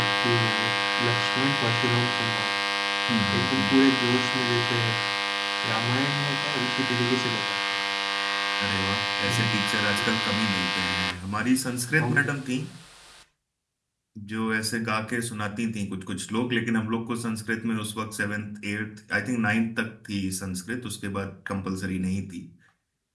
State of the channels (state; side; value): identical; both; correlation 1.00